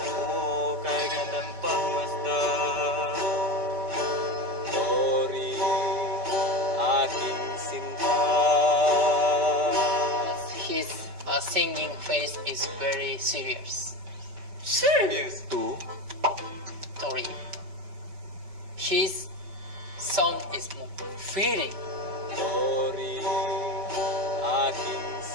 singing face is very serious. Serious. Two, Tori. His sound is more feeling. Tori, aking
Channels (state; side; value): late; left; 5.2 ms